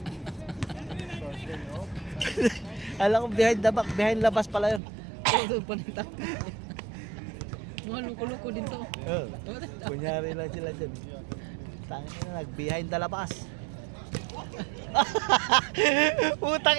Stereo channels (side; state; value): left; drops out; at 4.8 s